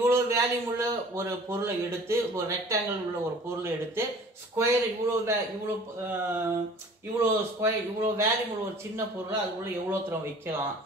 வேல்யூம் உள்ள ஒரு பொருளை எடுத்து, ஒரு ரெக்டாங்கிள் உள்ள ஒரு பொருளை எடுத்து ஸ்கொயர் இவ்வளோ ஸ்கொயர் இவ்வளோ வேல்யூம் உள்ள ஒரு சின்ன பொருளை அதுக்குள்ள எவ்வளோ தூரம் வைக்கலாம்,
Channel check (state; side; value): normal; both; correlation 0.48